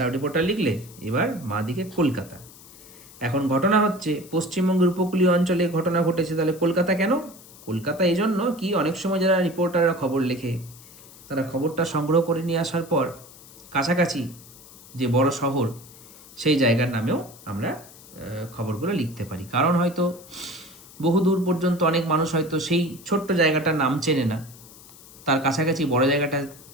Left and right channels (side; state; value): left; noise; hiss, 21 dB below the sound